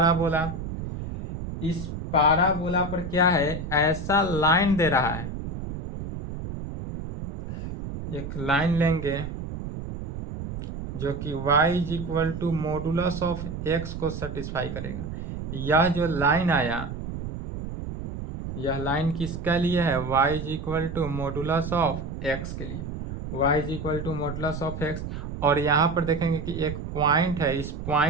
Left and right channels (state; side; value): noise; right; rumble, 7 dB below the sound